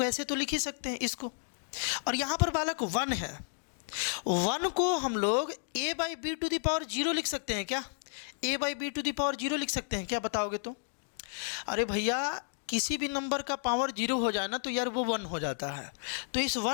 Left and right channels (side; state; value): right; silent; digital silence